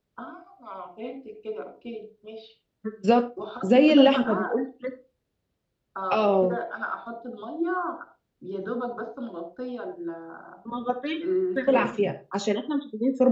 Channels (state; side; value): identical; both; correlation 1.00